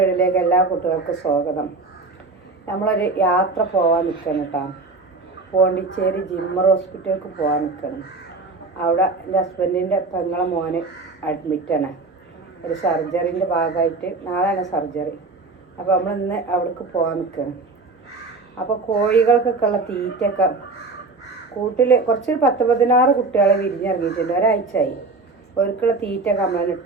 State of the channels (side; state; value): left; quieter; 3.6 dB